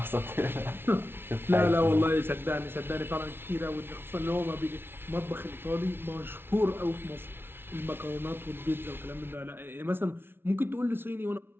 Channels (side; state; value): left; late; 0.11 ms